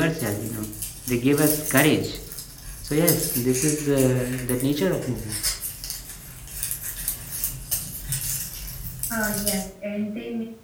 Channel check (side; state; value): both; identical; correlation 1.00